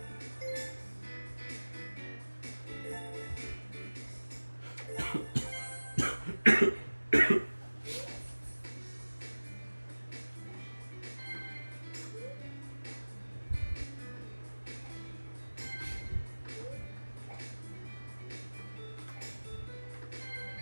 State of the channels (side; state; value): both; inverted; correlation -1.00